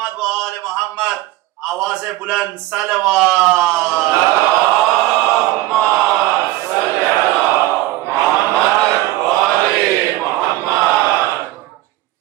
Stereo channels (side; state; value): left; quieter; 17.0 dB